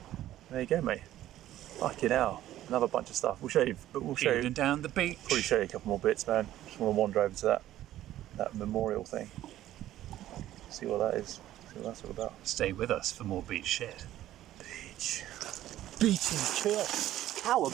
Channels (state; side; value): quieter; left; 13.4 dB